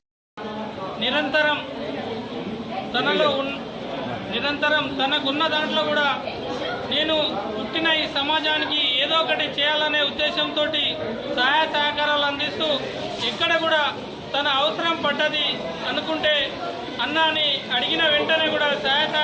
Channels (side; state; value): both; identical; correlation 1.00